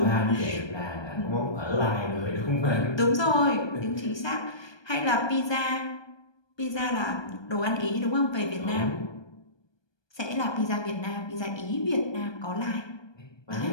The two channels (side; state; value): right; late; 1.2 ms